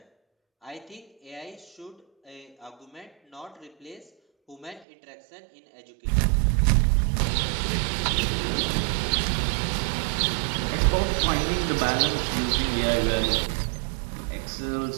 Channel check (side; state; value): left; drops out; at 4.9 s